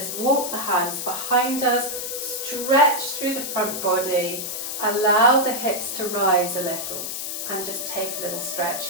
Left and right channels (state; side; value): noise; left; hiss, 5 dB below the sound